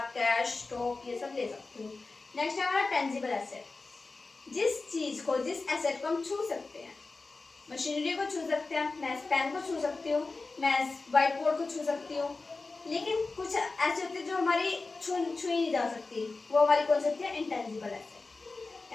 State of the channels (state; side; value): quieter; right; 3.7 dB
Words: कैश, स्टॉक ये सब ले सकते हो। नेक्स्ट है हमारा टेंजिबल एसेट। जिस चीज को, जिस एसेट को हम छू सकते हैं, मशीनरी को छू सकते हैं, मैं पेन को छू सकती हूँ, मैं व्हाइट बोर्ड को छू सकती हूँ, लेकिन कुछ ऐसे होते हैं जो हमारी छुई नहीं जा सकती, वो हमारी कौन सी होती है? Intangible asset.